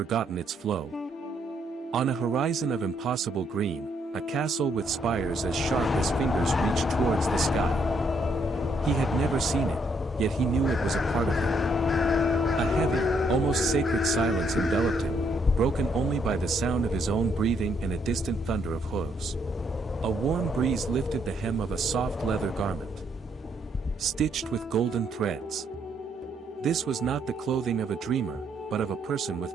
its flow. On a horizon of impossible green, a castle with spires as sharp as fingers reached towards the sky. He had never seen it, yet he knew it was a part of him. A heavy, almost sacred silence enveloped him, broken only by the sound of his own breathing and a distant thunder of hooves. A warm breeze lifted the hem of a soft leather garment, stitched with golden threads. This was not the clothing of a dreamer, but of a person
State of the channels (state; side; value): normal; both; correlation 0.72